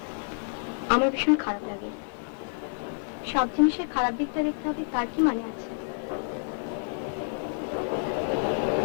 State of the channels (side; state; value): right; silent; 59 dB below the other